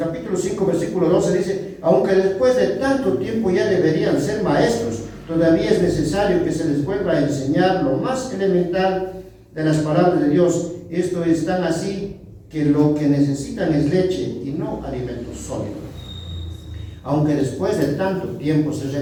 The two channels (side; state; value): both; identical; correlation 1.00